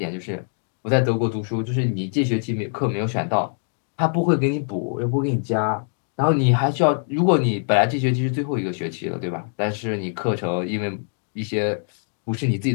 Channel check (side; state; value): right; silent; digital silence